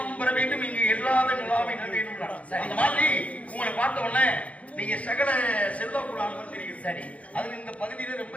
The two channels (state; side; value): late; right; 0.066 ms